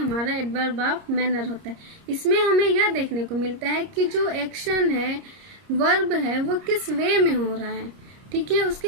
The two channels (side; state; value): left; late; 30 ms